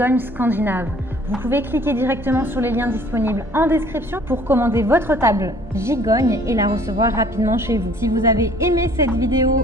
scandinaves. Vous pouvez cliquer directement sur les liens disponibles en description pour commander votre table gigogne et la recevoir rapidement chez vous. Si vous avez aimé cette vidéo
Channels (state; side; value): normal; both; correlation 0.55